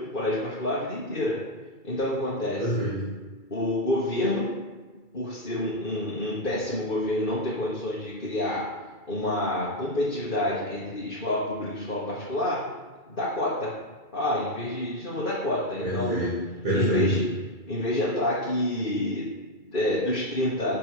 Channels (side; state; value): right; late; 2.3 ms